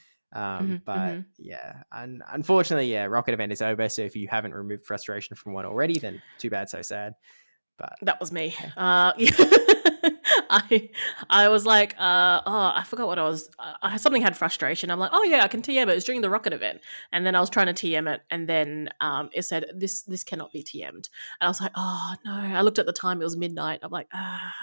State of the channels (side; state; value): both; inverted; correlation -1.00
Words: Mhm. But Mhm. yeah, unfortunately, yeah, Rocket event is over. So if you haven't removed frustration from one already, then too bad, so sad. But That was me. yeah. I I was like, I forgot what I was. Something had frustration. I'm like, oh yeah, I can TM it. It's during the rocket event, and then I was trying to TM it, and then it said this cannot be TM'd, and I was like, oh no. I looked at the time; it was midnight. I'm like, ah.